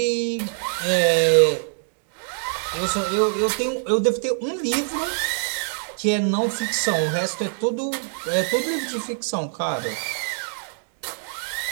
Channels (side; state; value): left; silent; digital silence